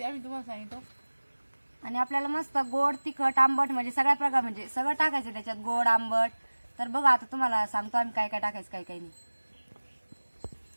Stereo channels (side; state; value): both; inverted; correlation -1.00